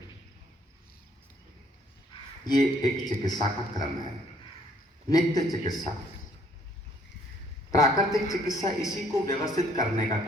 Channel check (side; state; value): both; normal; correlation 0.64